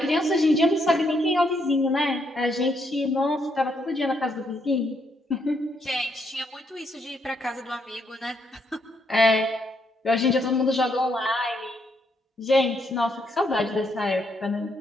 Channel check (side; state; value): both; normal; correlation 0.75